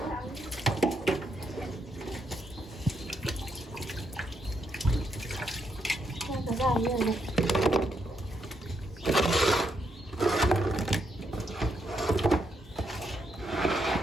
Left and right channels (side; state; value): both; normal; correlation 0.78